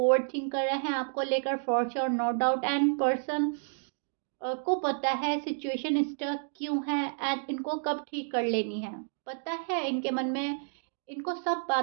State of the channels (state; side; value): silent; left; digital silence